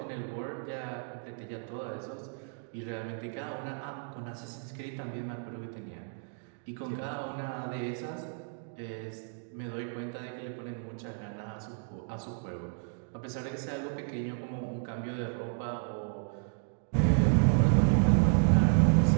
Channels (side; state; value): left; silent; 56 dB below the other